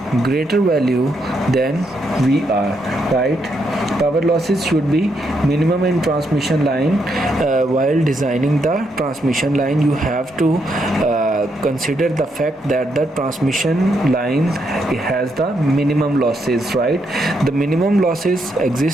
greater value than Vr, right? Power losses should be minimum in transmission line. While designing the transmission line, you have to consider the fact that the transmission line has the minimum losses, right? The minimum losses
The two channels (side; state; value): both; normal; correlation 0.78